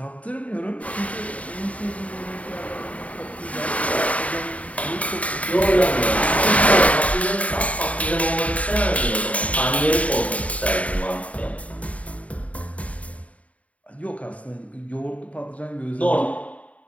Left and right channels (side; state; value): right; late; 0.067 ms